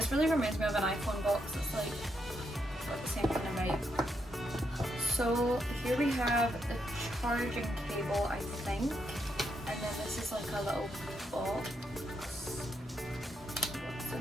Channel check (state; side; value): normal; both; correlation 0.80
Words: really reminds me of an iPhone box. It's like got the same kind of vibe. So here we have the charging cable, I think. And then this is like a little box. What's